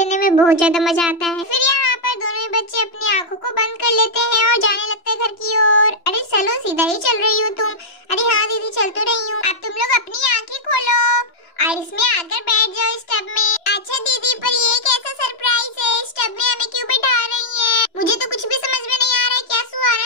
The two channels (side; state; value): right; late; 2.9 ms